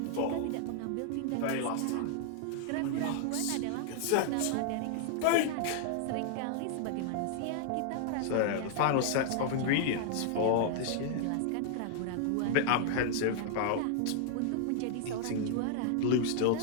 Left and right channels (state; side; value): different; both; correlation -0.01